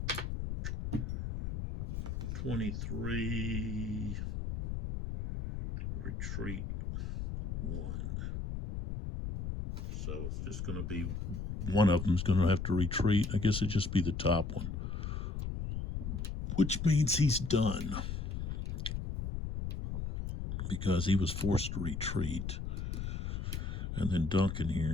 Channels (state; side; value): noise; left; rumble, 4 dB below the sound